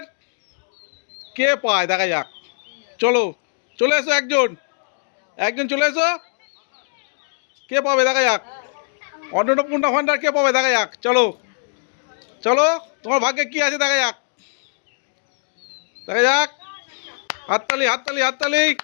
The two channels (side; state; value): right; silent; digital silence